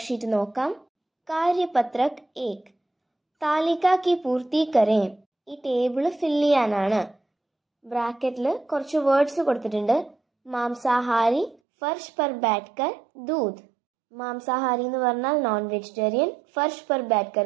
നോക്കാം. കാര്യപത്രക് 1 താലിക കി പൂർത്തി കരേ. ഈ ടേബിൾ ഫിൽ ചെയ്യാനാണ്. ബ്രാക്കറ്റിൽ കുറച്ച് വേർഡ്സ് കൊടുത്തിട്ടുണ്ട്. മാംസാഹാരി, ഫർഷ് പർ ബാറ്റ്കർ, ദൂത്. മാംസാഹാരി എന്ന് പറഞ്ഞാൽ നോൺ വെജിറ്റേറിയൻ, ഫർഷ് പർ ബാറ്റ്കർ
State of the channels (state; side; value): drops out; left; at 11.6 s